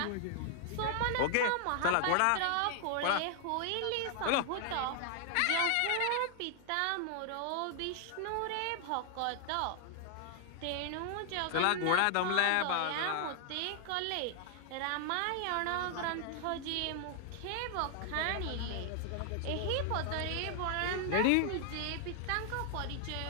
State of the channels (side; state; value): both; different; correlation 0.00